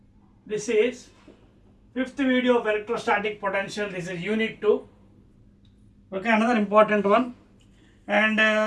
This is fifth video of electrostatic potential. This is unit 2. Okay, another important one. And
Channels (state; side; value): identical; both; correlation 1.00